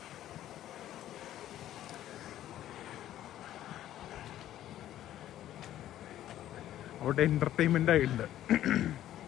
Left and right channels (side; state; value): right; quieter; 12.6 dB